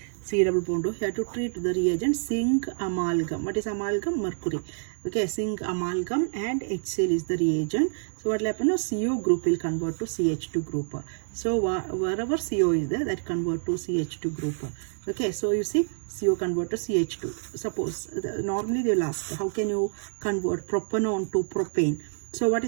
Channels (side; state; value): left; silent; digital silence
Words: C double bond O, here to treat the reagent zinc amalgam. What is amalgam? Mercury. Okay, zinc amalgam and HCl is the reagent. So what will happen now? CO group will convert to CH2 group. So wherever CO is there, that convert to CH2 group. Okay, so you see CO convert to CH2. Suppose normally they will ask, how can you convert propanone to propane? So what